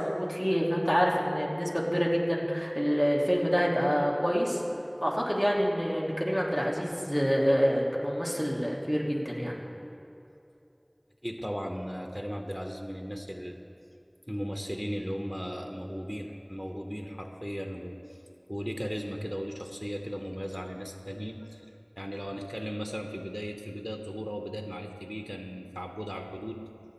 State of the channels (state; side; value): identical; both; correlation 1.00